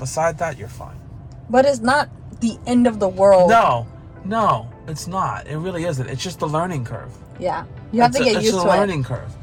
that, you're fine. But it's not the end of the world. No, it's not. It really isn't. It's just the learning curve. Yeah. You have to get used to it. It's a learning curve.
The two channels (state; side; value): identical; both; correlation 1.00